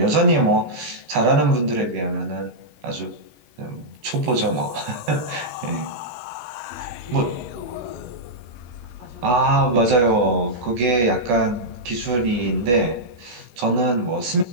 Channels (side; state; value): left; late; 17 ms